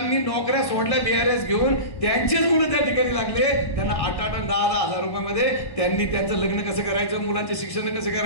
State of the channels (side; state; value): right; late; 1.1 ms